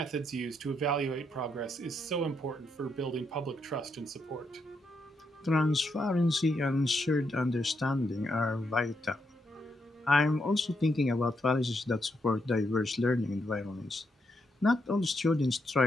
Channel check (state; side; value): normal; both; correlation 0.79